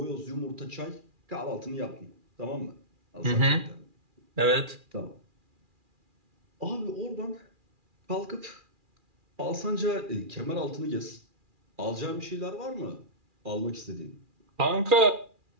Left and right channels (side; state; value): left; late; 2.4 ms